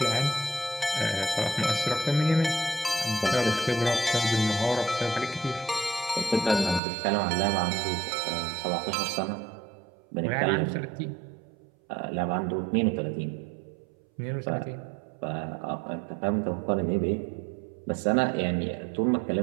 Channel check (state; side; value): drops out; left; at 6.8 s